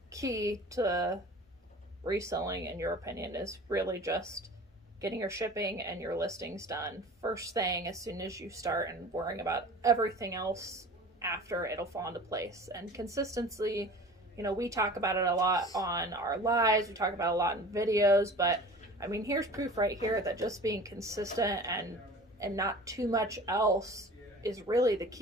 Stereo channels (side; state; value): both; normal; correlation 0.41